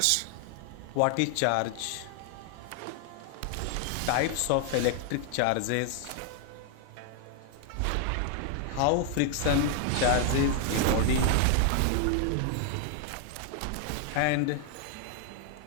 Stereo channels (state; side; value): different; both; correlation 0.00